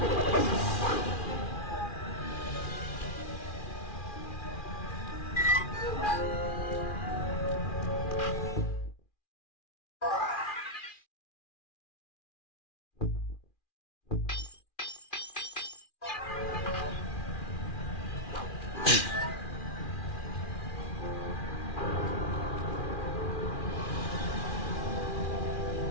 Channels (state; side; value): late; right; 2.4 ms